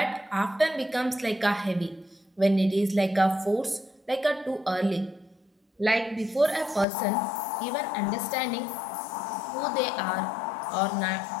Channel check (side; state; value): right; drops out; at 6.9 s